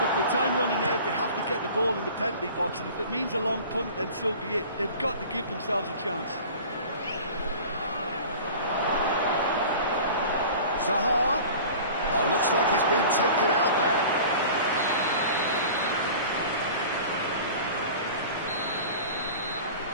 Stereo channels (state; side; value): inverted; both; correlation -0.41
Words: Look, with time running out, they have to get the ball in the penalty box, and if it means a long punt, then so be it. They've got to give themselves a chance. Zaha. Oh, looks like he's been taken out there.